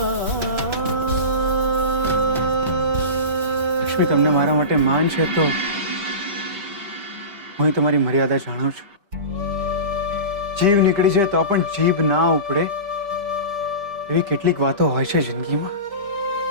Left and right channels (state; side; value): late; left; 5.1 ms